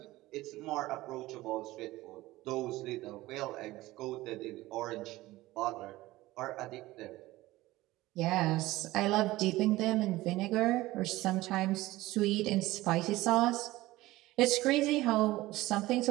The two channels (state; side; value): quieter; left; 18.0 dB